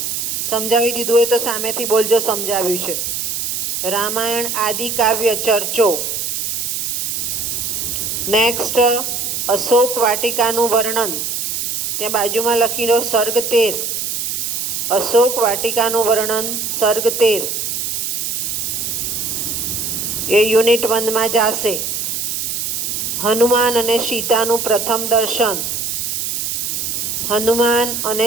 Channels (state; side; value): noise; right; hiss, 2 dB below the sound